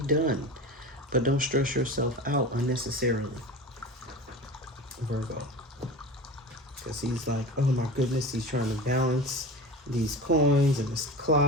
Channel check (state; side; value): normal; both; correlation 0.32